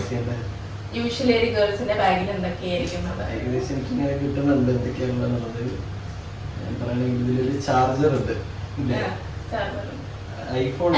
ചെയ്യണ്ടേ? യൂഷ്വലി ഒരു ഗേൾസിന്റെ ബാഗിൽ എന്തൊക്കെയായിരിക്കും ഏകദേശം എനിക്ക് ഇങ്ങനെ കിട്ടുന്നുണ്ട് എന്തൊക്കെയാണുള്ളത്. ഞാൻ പറയണെങ്കിൽ ഇതിലൊരു ചാർജർ ഉണ്ട്, ഐഫോൺ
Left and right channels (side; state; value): both; identical; correlation 1.00